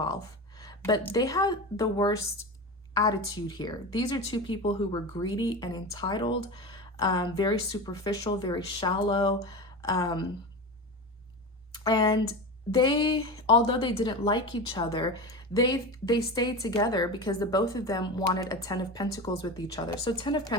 but they had the worst attitude here. These are two people who were greedy and entitled, very superficial, very shallow. And they, although they didn't like each other, they stayed together because the both of them wanted a Ten of Pentacles with each other. So Ten of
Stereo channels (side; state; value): both; normal; correlation 0.26